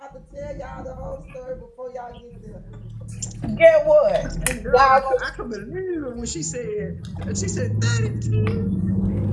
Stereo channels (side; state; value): both; identical; correlation 1.00